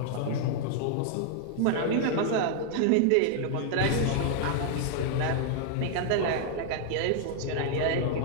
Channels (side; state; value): both; different; correlation 0.00